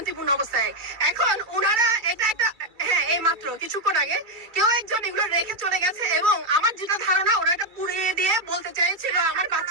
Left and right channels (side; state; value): left; late; 2.3 ms